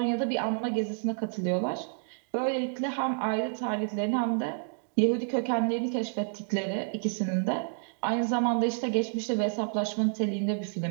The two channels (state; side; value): silent; left; digital silence